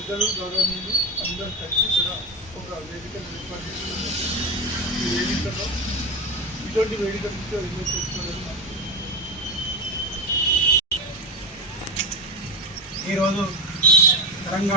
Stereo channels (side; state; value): both; normal; correlation 0.20